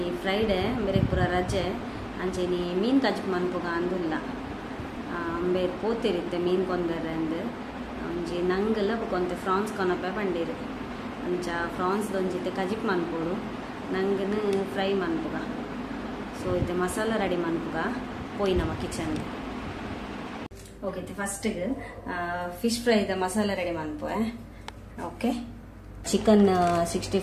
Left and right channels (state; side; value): identical; both; correlation 1.00